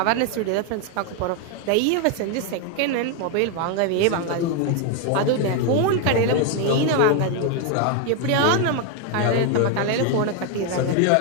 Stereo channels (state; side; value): different; both; correlation 0.01